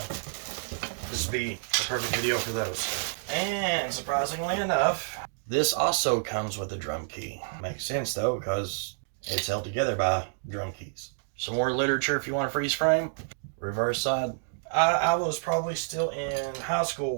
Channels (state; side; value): silent; left; digital silence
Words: this would be the perfect video for those. And surprisingly enough, this also comes with a drum key. Makes sense though, because it's held together by drum keys. Some more literature if you want a freeze frame. Reverse side. I was probably still in high